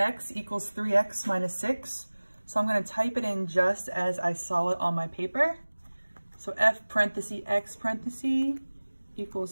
equals 3x minus 6. So I'm gonna type it in just as I saw it on my paper. So f parenthesis x parenthesis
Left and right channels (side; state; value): both; inverted; correlation -1.00